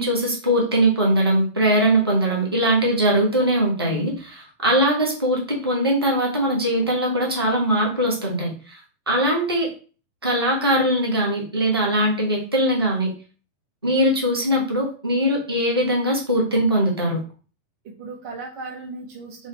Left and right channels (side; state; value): both; inverted; correlation -0.34